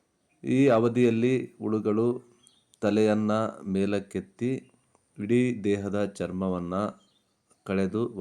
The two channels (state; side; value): identical; both; correlation 1.00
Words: ಈ ಅವಧಿಯಲ್ಲಿ ಹುಳುಗಳು ತಲೆಯನ್ನು ಮೇಲಕ್ಕೆತ್ತಿ ಇಡೀ ದೇಹದ ಚರ್ಮವನ್ನು ಕಳೆದು